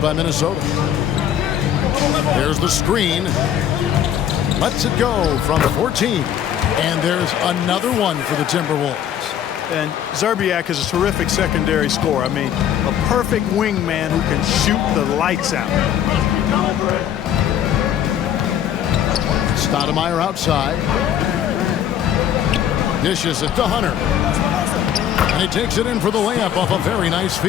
by Minnesota. There's the screen. Lets it go from 14. And there's another one for the Timberwolves. And Serbiak is a terrific secondary scorer. I mean, a perfect wingman who can shoot the lights out. Stoudemire outside. Dishes it to Hunter. And he takes it in for the layup off a very nice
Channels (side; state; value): right; quieter; 10.0 dB